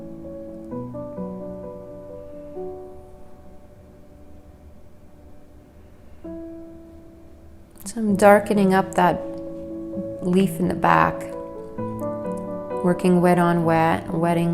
So I'm darkening up that leaf in the back, working wet on wet, wetting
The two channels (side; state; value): both; identical; correlation 1.00